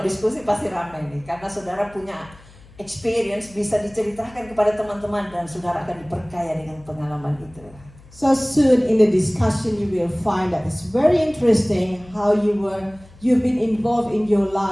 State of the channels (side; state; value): left; noise; hum, 23 dB below the sound